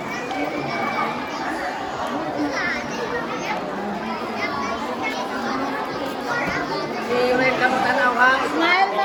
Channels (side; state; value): both; identical; correlation 1.00